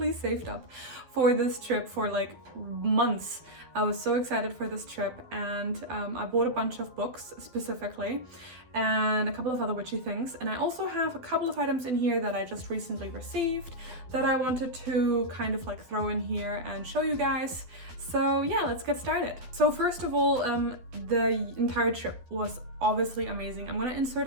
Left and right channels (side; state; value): left; late; 12 ms